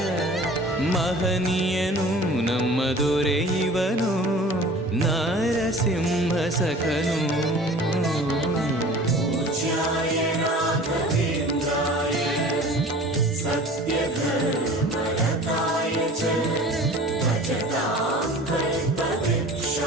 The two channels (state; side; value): normal; both; correlation 0.43